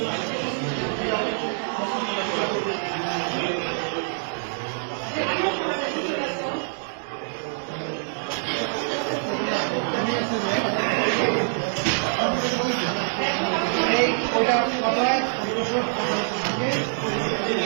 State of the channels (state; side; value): silent; left; 62 dB below the other